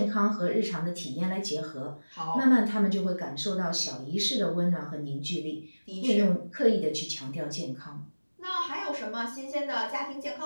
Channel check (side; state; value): both; inverted; correlation -1.00